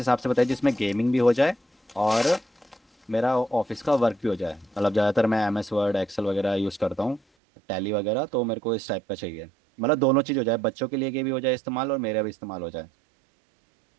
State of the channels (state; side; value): drops out; left; at 7.2 s